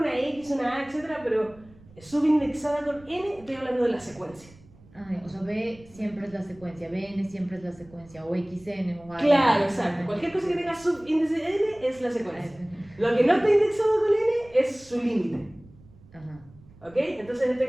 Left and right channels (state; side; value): noise; right; rumble, 24 dB below the sound